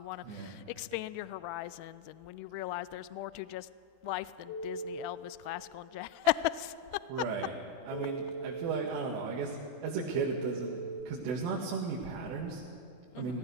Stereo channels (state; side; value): late; left; 24 ms